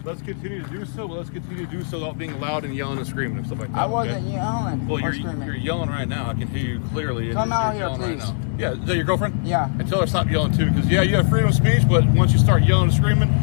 Let's continue to do so. Let's continue to do so without being loud and yelling and screaming and stuff like that. I wasn't okay? yelling Well, or you're screaming. yelling right now. I can hear you clearly. Come out here, yelling please. Right now. Yeah, is that your girlfriend? Yeah. And tell her to stop yelling too, because yeah, you have freedom of speech, but once you start yelling and screaming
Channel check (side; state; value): right; silent; digital silence